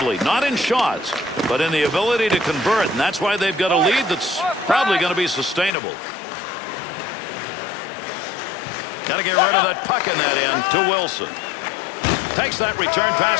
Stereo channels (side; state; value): right; drops out; at 5.7 s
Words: Not in shots, but in the ability to convert. And that's why they've got a lead that's probably going to be sustainable. Got to get rid of that puck in that end to Wilson. Takes that return